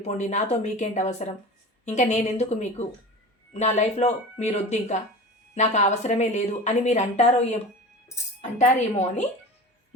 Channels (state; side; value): normal; both; correlation 0.34